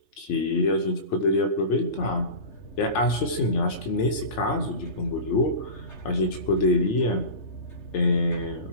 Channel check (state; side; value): late; right; 3.3 ms